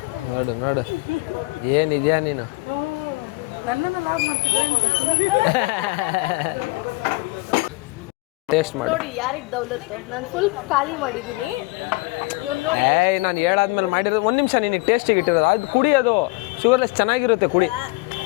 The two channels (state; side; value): quieter; right; 23.7 dB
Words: ನೋಡು ನೋಡು, ಏನಿದ್ಯಾ ನೀನು? ನನ್ನನ್ನು ಲಾಗ್ ಮಾಡ್ತಿದ್ದೆ. ಟೇಸ್ಟ್ ಮಾಡಿ ನೋಡಿ ಯಾರಿಗೆ ದೌಲತ್ತು. ನಾನು ಫುಲ್ ಖಾಲಿ ಮಾಡಿದ್ದೀನಿ. ಇವ್ನು ನೋಡಿ ಎಷ್ಟು ನಾನು ಹೇಳಾದ್ಮೇಲೆ ಮಾಡಿರೋದು. ಒಂದು ನಿಮಿಷ, ನಿನಗೆ ಟೇಸ್ಟಿಗೆ ಇಟ್ಟಿರೋದು ಅದು ಕುಡಿಯೋದು. ಶುಗರ್ಲೆಸ್ ಚೆನ್ನಾಗಿರುತ್ತೆ, ಕುಡಿ.